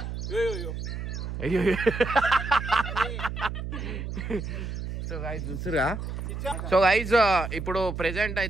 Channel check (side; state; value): right; noise; hum, 5 dB below the sound